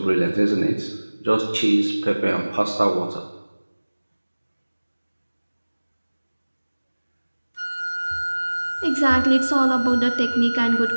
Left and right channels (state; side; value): inverted; both; correlation -1.00